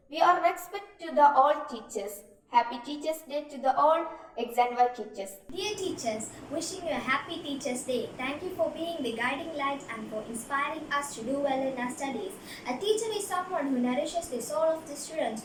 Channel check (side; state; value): both; identical; correlation 1.00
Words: We are respect to the all teachers. Happy Teachers Day to the all XandY teachers. Dear teachers, wishing you a happy Teachers Day. Thank you for being the guiding light and for inspiring us to do well in our studies. A teacher is someone who nourishes the soul of the students